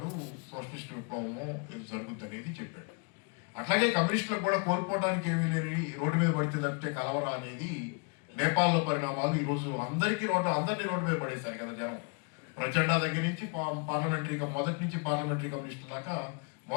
సోషలిస్ట్ విప్లవము జరుగుద్ది అనేది చెప్పాడు. అట్లాగే కమ్యూనిస్టులకు కూడా కోల్పోవడానికి ఏమీ లేని రోడ్డు మీద పడితే తప్పితే కలవరా అనేది నేపాల్లో పరిణామాలు. ఈరోజు అందరినీ రోడ్డు మీద పడేశారు కదా జనం. ప్రచండ దగ్గర నుంచి మొదటి నుంచి పార్లమెంటరీ కమ్యూనిస్టుల దాకా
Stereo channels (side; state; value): right; quieter; 36.0 dB